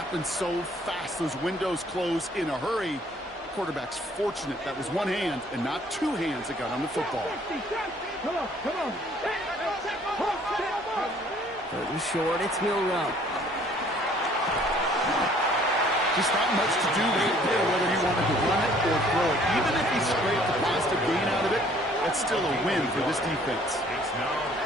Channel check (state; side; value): normal; both; correlation 0.58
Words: so fast. Those windows close in a hurry. Quarterback's fortunate that was one hand and not two hands that got on the football. Come on. 3rd and short, it's Milrow. Just not much to do right there, whether he wanted to run it or throw it. Even if he scraped the positive gain out of it, that's still a win for this defense.